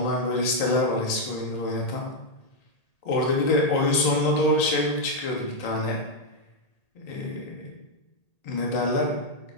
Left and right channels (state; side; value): late; right; 1.8 ms